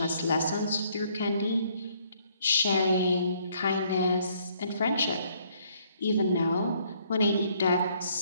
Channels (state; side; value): inverted; both; correlation -0.66